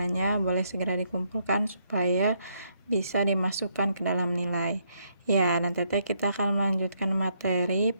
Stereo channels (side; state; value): both; inverted; correlation -0.74